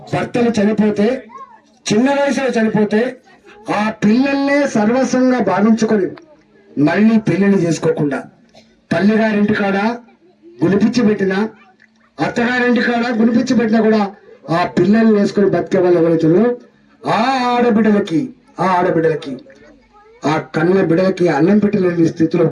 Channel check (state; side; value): identical; both; correlation 1.00